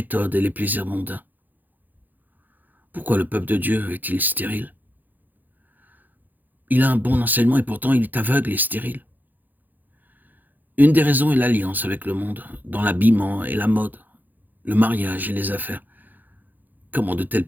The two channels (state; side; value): late; left; 0.085 ms